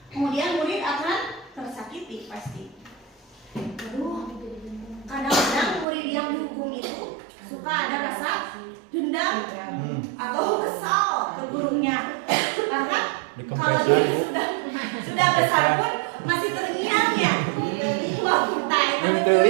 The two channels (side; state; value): left; drops out; at 5.9 s